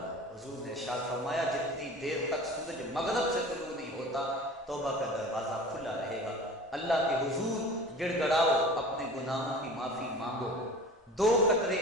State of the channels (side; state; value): both; normal; correlation 0.39